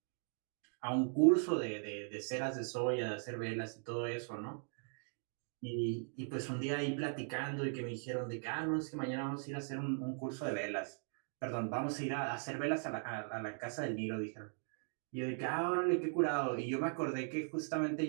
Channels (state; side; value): silent; left; 52 dB below the other